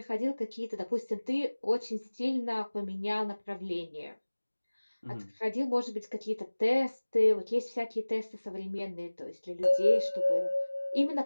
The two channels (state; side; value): inverted; both; correlation -1.00